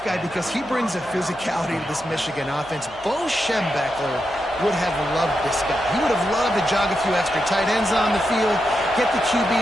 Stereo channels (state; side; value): noise; left; hum, 24 dB below the sound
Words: because he brings a physicality to this Michigan offense. Bo Schembechler would have loved this guy. He would have loved to jog a few extra tight ends on the field, get the QB